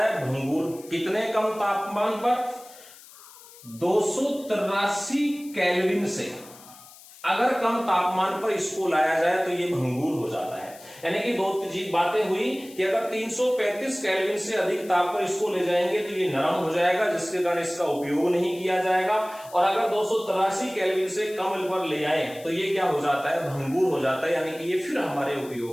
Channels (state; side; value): noise; left; hiss, 21 dB below the sound